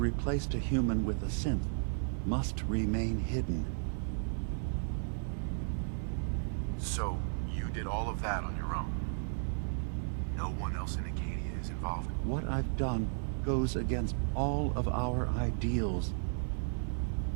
a human with a synth must remain hidden. So, you did all of that on your own? No one else in Acadia is involved? What I've done goes against all of our ideals.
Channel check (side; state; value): left; silent; 55 dB below the other